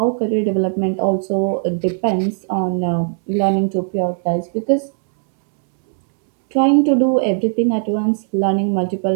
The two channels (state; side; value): silent; left; 67 dB below the other